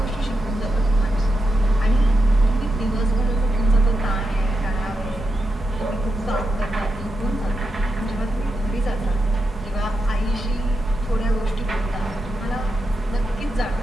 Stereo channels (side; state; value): both; normal; correlation 0.87